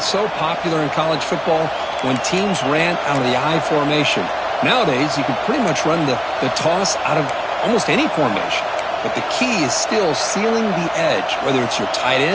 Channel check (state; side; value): identical; both; correlation 1.00